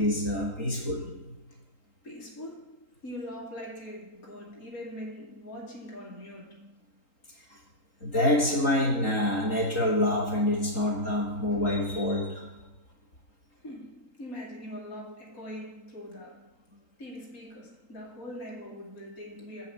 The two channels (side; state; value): right; late; 3.8 ms